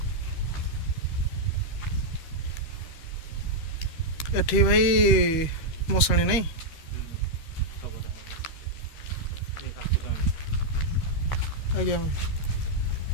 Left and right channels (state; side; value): late; right; 13 ms